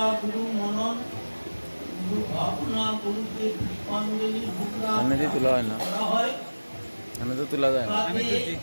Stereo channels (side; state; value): both; inverted; correlation -1.00